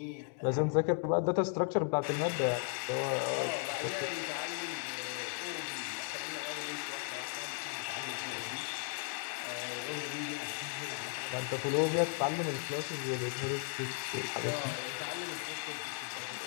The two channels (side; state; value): right; silent; 54 dB below the other